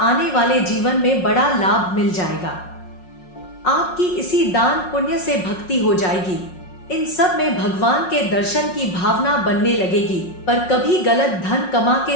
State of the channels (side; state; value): right; late; 5.5 ms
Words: वाले जीवन में बड़ा लाभ मिल जाएगा। आपकी इसी दान पुण्य से भक्ति हो जाएगी। इन सब में भगवान के दर्शन की भावना बनने लगेगी। पर कभी गलत धन कमा